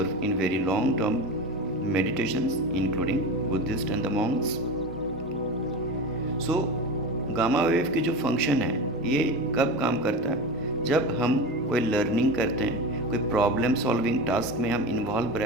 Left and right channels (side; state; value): both; normal; correlation 0.26